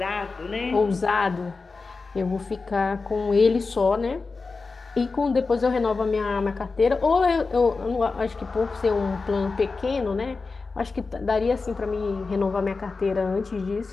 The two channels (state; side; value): quieter; right; 4.1 dB